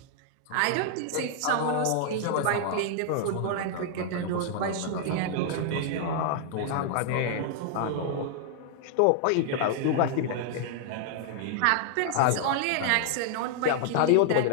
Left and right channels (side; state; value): both; different; correlation -0.01